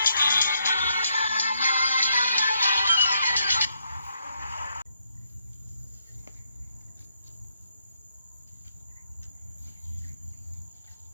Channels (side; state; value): both; inverted; correlation -0.77